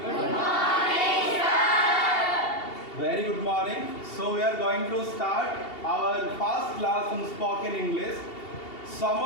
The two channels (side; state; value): right; late; 2.7 ms